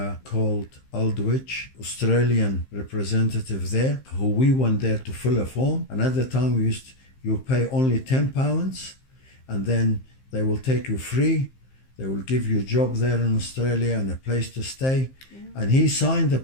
called Aldwych, Australian representative there, who we went there to fill a form. And at the time you pay only £10, and then they will take you free. They will give you a job there in Australia and a place to stay. Yeah. And he signed the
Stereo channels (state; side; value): late; right; 15 ms